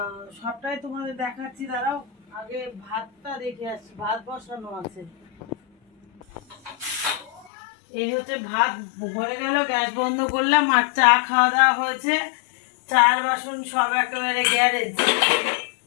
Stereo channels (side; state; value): right; drops out; at 7.5 s